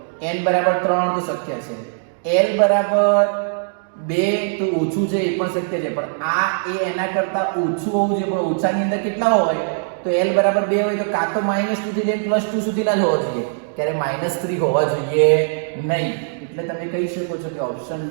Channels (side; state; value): left; silent; digital silence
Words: n બરાબર 3 તો શક્ય છે, l બરાબર 2 તો ઓછું છે એ પણ શક્ય છે, પણ આ એ એના કરતા ઓછું હોવું જોઈએ. પણ ઓછાની અંદર કેટલા હોય? તો l બરાબર 2 હોય તો કાં તો -2 થી લઈને +2 સુધીના જ હોવા જોઈએ, ત્યારે -3 હોવા જોઈએ નહીં. એટલે તમે કહી શકો છો કે ઓપ્શન